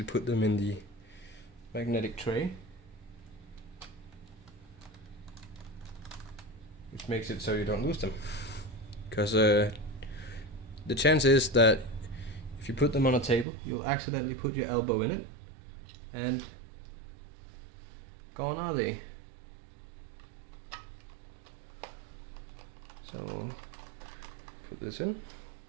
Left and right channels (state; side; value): drops out; left; at 13.5 s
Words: put them in the magnetic tray, which makes it so you don't lose them. Because the chance is that if you put them on a table, you'll accidentally put your elbow in it, and gone are they. So put this in.